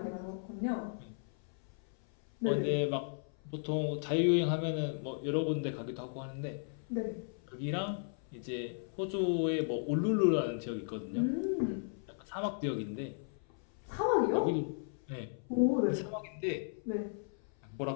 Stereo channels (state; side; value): silent; right; 54 dB below the other